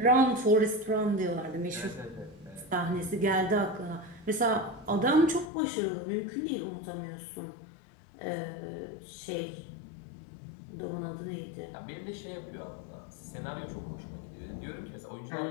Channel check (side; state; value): right; drops out; at 5.5 s